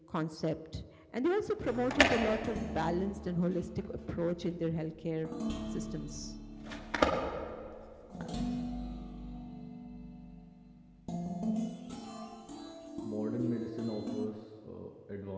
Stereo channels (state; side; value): identical; both; correlation 1.00